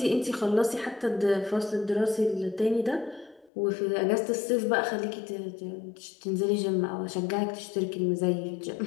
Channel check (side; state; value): right; drops out; at 3.5 s